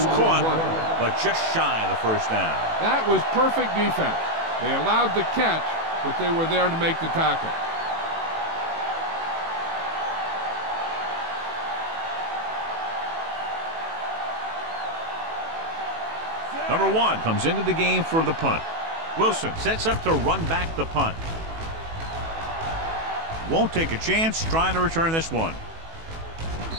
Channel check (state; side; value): late; left; 18 ms